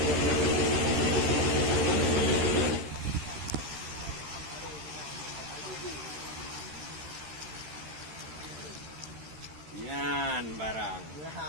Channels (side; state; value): left; late; 13 ms